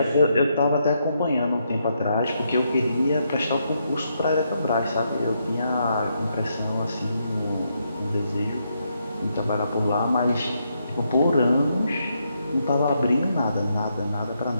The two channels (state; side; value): inverted; both; correlation -0.79